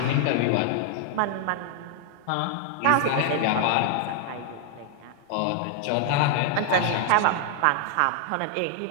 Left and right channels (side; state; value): both; different; correlation 0.00